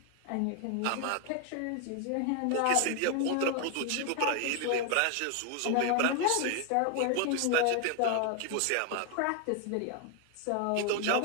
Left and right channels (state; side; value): different; both; correlation 0.01